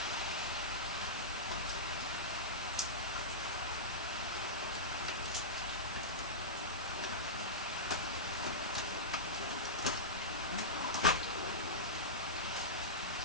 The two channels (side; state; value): both; normal; correlation -0.13